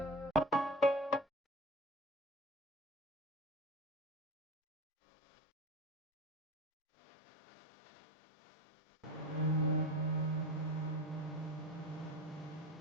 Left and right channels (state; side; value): normal; both; correlation 0.29